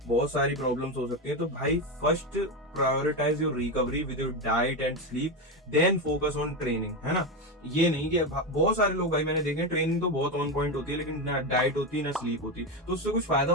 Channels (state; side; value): normal; both; correlation 0.13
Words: बहुत सारी प्रॉब्लम्स हो सकती है। तो भाई first prioritize your recovery with your diet and sleep, then focus on training, है ना। ये नहीं कि बहुत सारे लोग भाई मैंने देखे ट्रेनिंग तो बहुत ऑन पॉइंट होती है, लेकिन ना डाइट होती है ना स्लीप होती, तो उससे कुछ फायदा